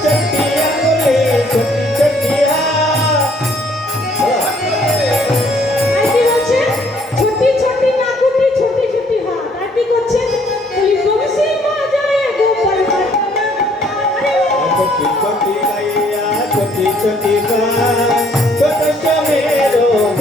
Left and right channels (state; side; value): normal; both; correlation 0.63